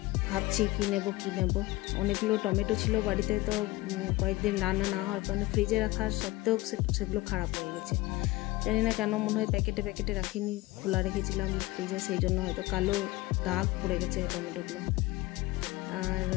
ভাবছি কী নেব। অনেকগুলো টমেটো ছিল বাড়িতে, তো কয়েকদিন রান্না না হওয়ার কারণে ফ্রিজে রাখার সত্ত্বেও সেগুলো খারাপ হয়ে গেছে। জানি না কেন, মনে হয় প্যাকেটে রাখিনি, খোলা রেখেছিলাম ফ্রিজে, সেই জন্য হয়তো কালো দাগ পড়ে গেছে টমেটোগুলো। আর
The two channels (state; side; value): quieter; right; 19.6 dB